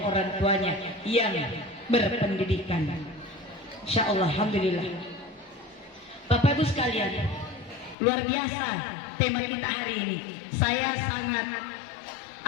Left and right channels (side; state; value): right; drops out; at 8.0 s